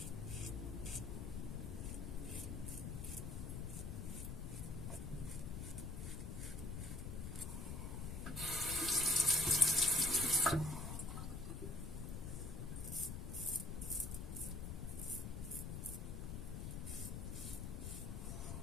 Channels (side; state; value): left; noise; rumble, 5 dB below the sound